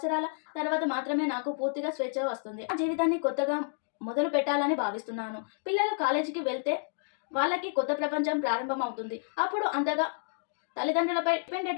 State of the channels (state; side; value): silent; right; digital silence